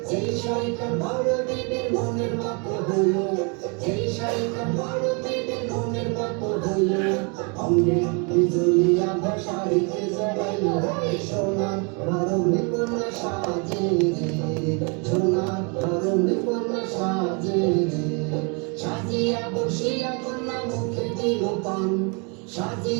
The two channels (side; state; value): left; quieter; 34.0 dB